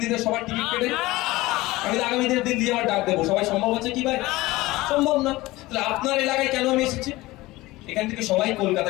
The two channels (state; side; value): quieter; right; 19.4 dB